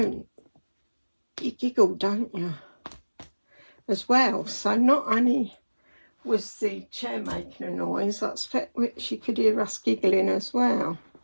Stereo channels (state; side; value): inverted; both; correlation -1.00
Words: you giggle, don't you, as well. So not only was the chair making a noise, I expect she could hear us giggling as well.